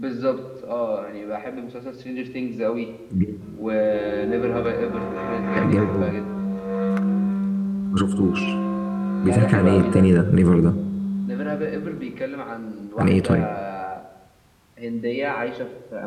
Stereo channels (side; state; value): both; identical; correlation 1.00